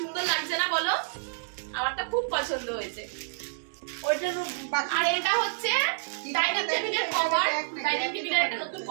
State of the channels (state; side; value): silent; left; digital silence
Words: লাগছে না বলো? আমারটা খুব পছন্দ হয়েছে। আর এটা হচ্ছে ডাইনিং টেবিলের কভার। ডাইনিং টেবিলের একটা নতুন